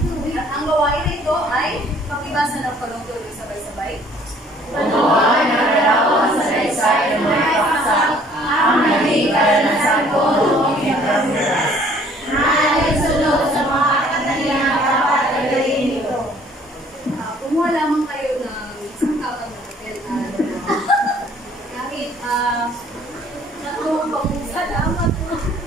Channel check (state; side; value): normal; both; correlation 0.58